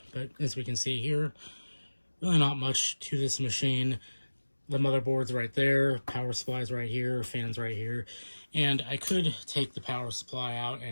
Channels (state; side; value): inverted; both; correlation -1.00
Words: but as we can see here, really not much to this machine. The motherboard's right there, power supply's right here, fan's right here, and I could take the power supply out